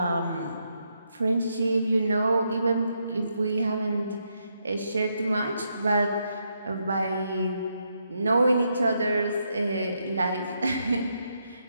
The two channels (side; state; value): both; inverted; correlation -0.79